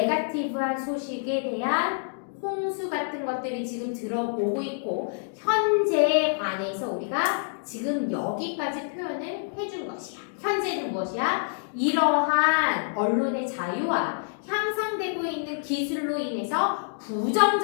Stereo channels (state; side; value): silent; right; digital silence